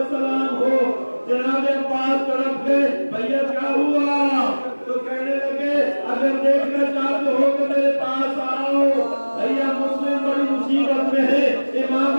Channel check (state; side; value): inverted; both; correlation -1.00